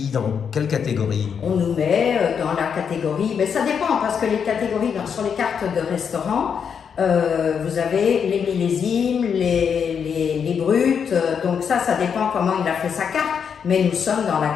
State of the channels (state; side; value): quieter; right; 7.0 dB